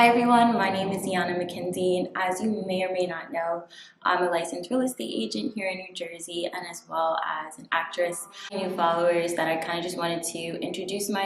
everyone, my name is Deanna McKenzie, and as you may or may not know, I'm a licensed real estate agent here in New Jersey and as well as an actress. New followers that I kind of just wanted to introduce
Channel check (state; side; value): identical; both; correlation 1.00